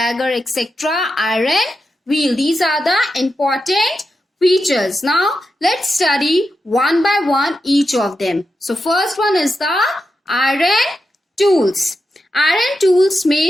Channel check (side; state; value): both; normal; correlation 0.88